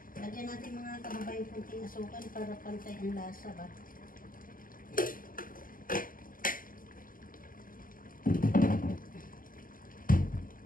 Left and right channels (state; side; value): late; right; 0.40 ms